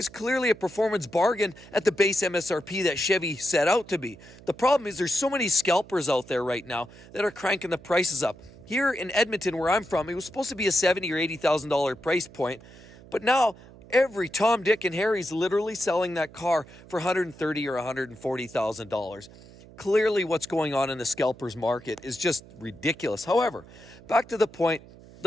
clearly a performance bargain at the base MSRP that Chevy set out to be. The problem is there's so many scalpers out there right now that are cranking the prices up. Here in Edmonton, where I'm from, it was supposed to be a $70,000 or $80,000 price point, but now every Tom, Dick, and Harry's literally selling that car for $130,000 or $140,000. Clearly, what's going on in the scalpers market is just ridiculous. However, back to the point,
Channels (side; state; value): right; noise; hum, 21 dB below the sound